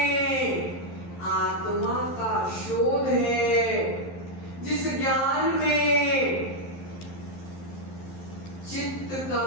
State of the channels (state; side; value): late; right; 11 ms